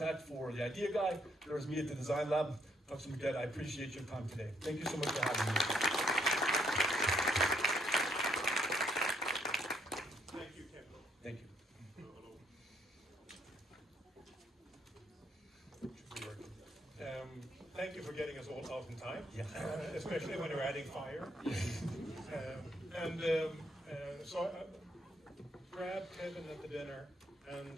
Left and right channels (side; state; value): both; normal; correlation 0.71